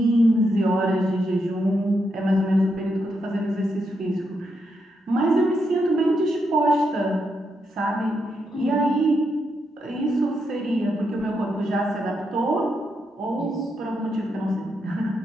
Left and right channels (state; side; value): normal; both; correlation 0.81